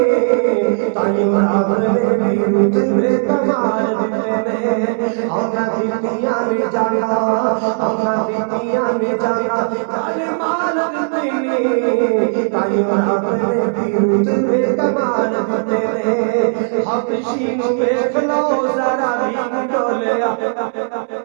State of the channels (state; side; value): silent; left; 68 dB below the other